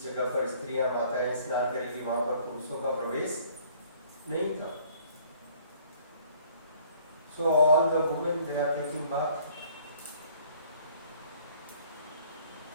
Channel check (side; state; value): both; inverted; correlation -0.57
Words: जगह पर स्त्रियां माताएं स्नान करेंगी वहां पर पुरुषों का प्रवेश नहीं था। So all the women, they are taking bath.